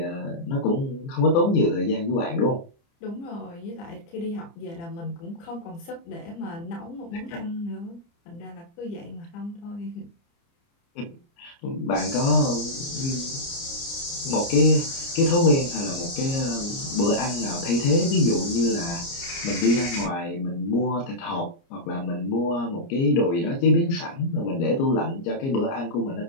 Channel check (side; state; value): right; late; 30 ms